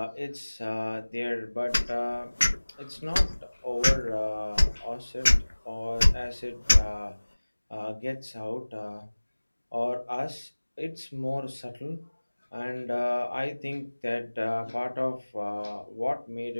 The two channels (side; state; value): both; inverted; correlation -1.00